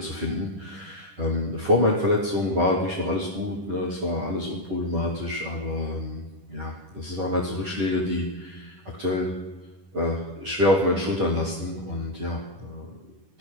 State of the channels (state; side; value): late; left; 10 ms